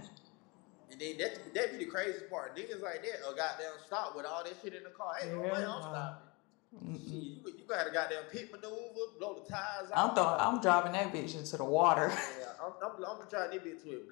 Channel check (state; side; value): quieter; right; 27.9 dB